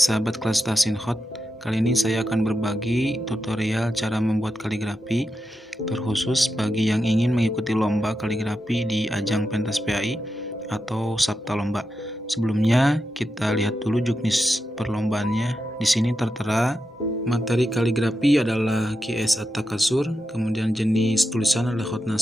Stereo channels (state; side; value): normal; both; correlation 0.88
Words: kelas Tasinhot, kali ini saya akan berbagi tutorial cara membuat kaligrafi terkhusus bagi yang ingin mengikuti lomba kaligrafi di ajang pentas PAI atau sabta lomba. Sebelumnya kita lihat dulu juknis perlombaannya. Di sini tertera materi kaligrafi adalah At-Atakatsur, kemudian jenis tulisan adalah hot